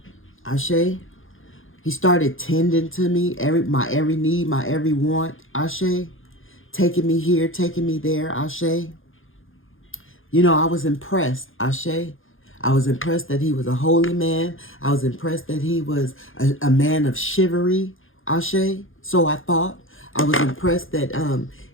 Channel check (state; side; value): late; right; 0.59 ms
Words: Ashe. He started tending to me, my every need, my every want. Ashe. Taking me here, taking me there. Ashe. You know, I was impressed. Ashe. I was impressed that he was a holy man. I was impressed that he was a man of chivalry. Ashe. So I thought. I was impressed that